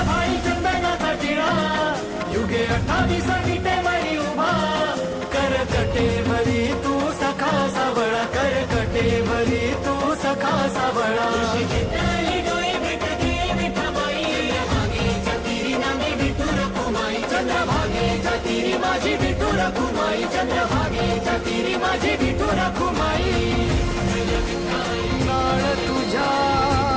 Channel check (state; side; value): identical; both; correlation 1.00